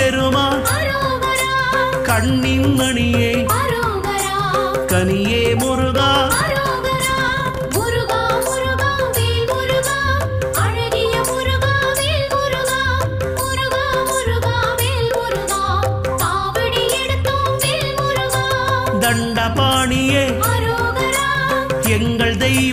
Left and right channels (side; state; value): both; identical; correlation 1.00